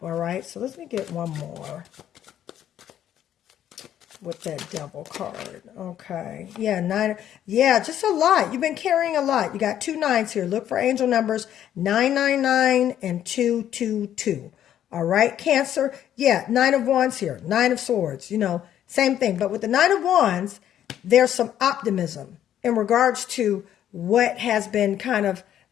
All right, so let me get one more with that Devil card. Okay. Yeah, 9. Yeah, just a lot. You've been carrying a lot. You got 2 9s here. Look for angel numbers 999 and 222. All right, Cancer. Yeah, 9 of Wands here. 9 of Swords. Same thing. But with the 9 of Wands, there's some optimism in regards to what has been kind of,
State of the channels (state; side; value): quieter; right; 10.8 dB